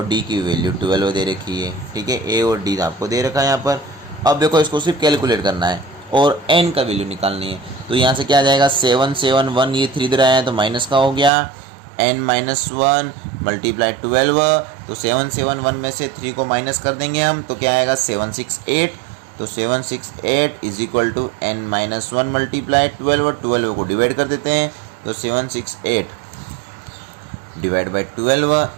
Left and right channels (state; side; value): drops out; left; at 11.3 s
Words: D की वैल्यू 12 दे रखी है, ठीक है। A और D आपको दे रखा है यहाँ पर। अब देखो, इसको सिर्फ कैलकुलेट करना है और n का वैल्यू निकालनी है। तो यहाँ से क्या आ जाएगा? 771, ये 3 दे रहा है तो माइनस का हो गया, n माइनस 1 मल्टीप्लाई 12। तो 771 में से 3 को माइनस कर देंगे हम, तो क्या आएगा? 768। तो 768 is equal to n minus 1 multiply 12 को डिवाइड कर देते हैं, तो 768 divide by